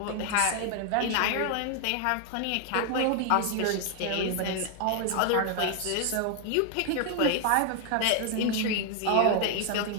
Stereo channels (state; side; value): different; both; correlation 0.00